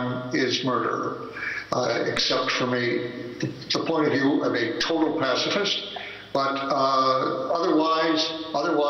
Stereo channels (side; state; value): both; identical; correlation 1.00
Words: is murder, except from the point of view of a total pacifist. But otherwise,